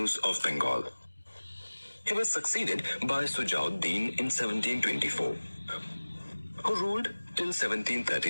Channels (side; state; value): both; inverted; correlation -1.00